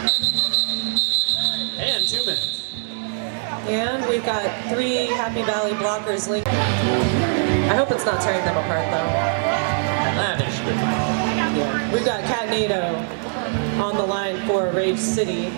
And 2 minutes. And we've got 3 Happy Valley blockers linked. I hope it's not tearing them apart though. I think she should be fine. Yeah. We've got Catnado on the line for Rage City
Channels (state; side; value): silent; left; 64 dB below the other